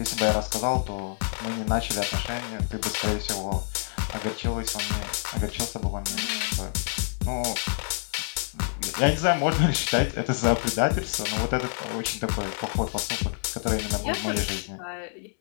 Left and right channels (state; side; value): silent; right; 60 dB below the other